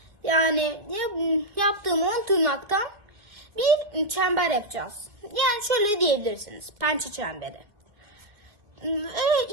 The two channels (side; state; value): left; late; 2.4 ms